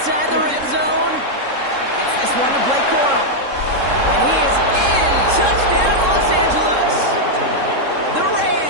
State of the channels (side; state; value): left; late; 3.7 ms